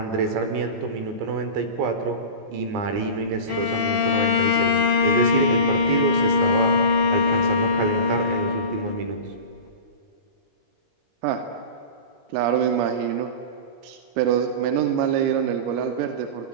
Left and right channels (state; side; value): late; left; 19 ms